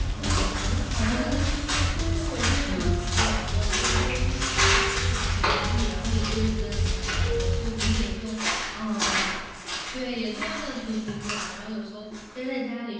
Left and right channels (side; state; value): both; identical; correlation 1.00